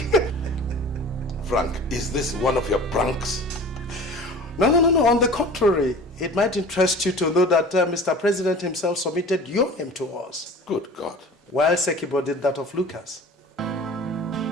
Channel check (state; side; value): normal; both; correlation 0.40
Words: at him. Frank, is this one of your pranks? No. On the contrary, it might interest you to know that Mr. President himself submitted your name to us. Good God. While Sekibo did that of Lucas.